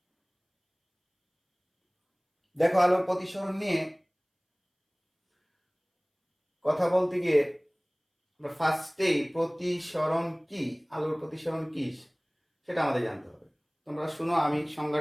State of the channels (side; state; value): both; identical; correlation 1.00